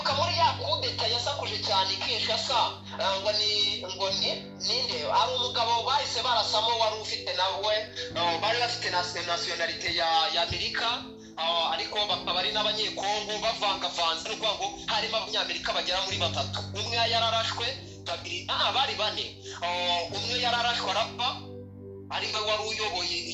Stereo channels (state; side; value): identical; both; correlation 1.00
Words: muri ya kudeta yasakuje cyane Kinshasa ngo ninde ari umugabo bahise barasamo wari ufite nawe bari bafite nationality ya Amerika ariko bakaba ari n'abanyekongo bavangavanze n'uko ngo harimo abanyamerika bagera muri batatu umwe yararashwe babiri bari bane umwe yararashwe arapfa ari we wari uyoboye